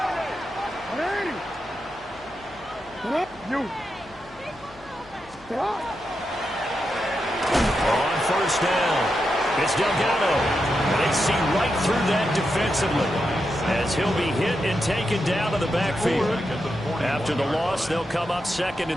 You. On 1st down, it's Delgado. And they see right through that defensively as he'll be hit and taken down to the backfield. After the loss, they'll come up 2nd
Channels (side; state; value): left; noise; hum, 24 dB below the sound